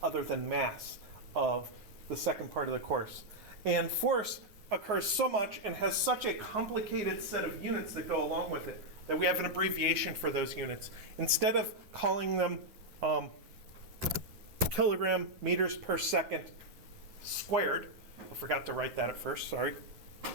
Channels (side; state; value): left; late; 9.5 ms